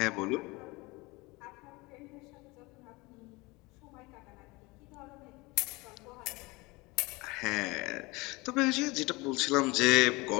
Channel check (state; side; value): quieter; right; 23.9 dB